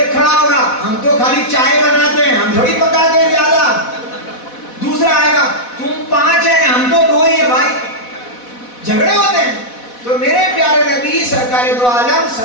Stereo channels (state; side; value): late; right; 4.1 ms